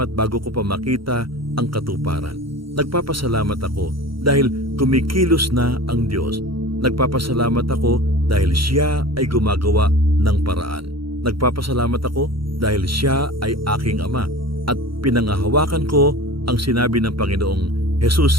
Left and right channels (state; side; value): late; left; 0.74 ms